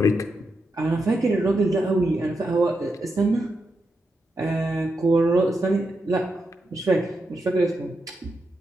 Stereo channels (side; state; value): both; normal; correlation 0.85